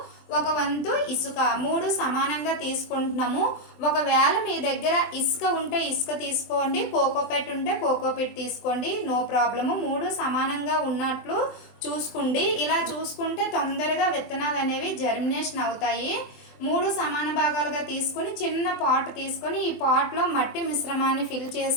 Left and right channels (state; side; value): late; right; 24 ms